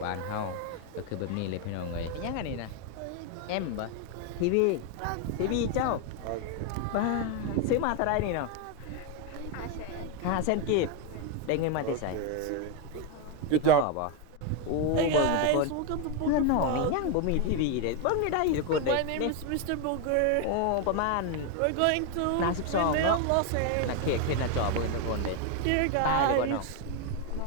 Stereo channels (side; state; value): both; different; correlation 0.01